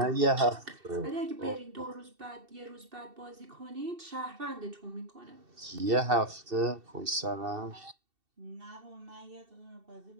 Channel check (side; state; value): left; late; 2.7 ms